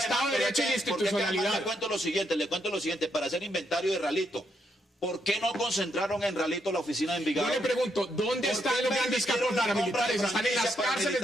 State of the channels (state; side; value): normal; both; correlation 0.78